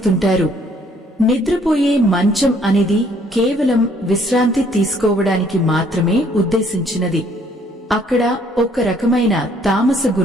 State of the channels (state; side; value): normal; both; correlation 0.63